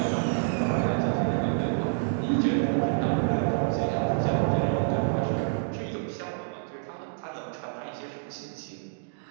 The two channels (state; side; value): silent; left; digital silence